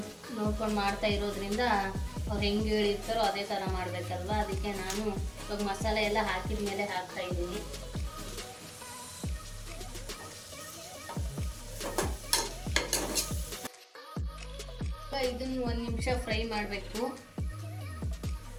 ನೋಡ್ಕೊಂಡು ಮಾಡ್ತಾ ಇರೋದ್ರಿಂದ ಅವ್ರು ಹೆಂಗೆ ಹೇಳಿರ್ತಾರೋ ಅದೇ ಥರ ಮಾಡಬೇಕಲ್ವ. ಅದಕ್ಕೆ ನಾನು ಇವಾಗ ಮಸಾಲೆ ಎಲ್ಲ ಹಾಕಿದ ಮೇಲೆ ಹಾಕ್ತಾ ಇದ್ದೀನಿ. ಇದನ್ನು 1 ನಿಮಿಷ ಫ್ರೈ ಮಾಡಬೇಕು.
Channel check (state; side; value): identical; both; correlation 1.00